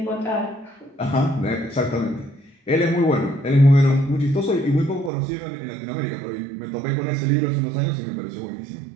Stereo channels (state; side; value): drops out; left; at 5.1 s